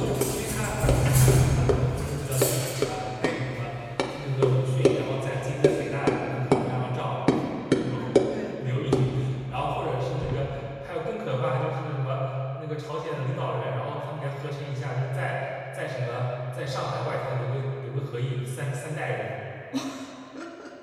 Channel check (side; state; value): both; identical; correlation 1.00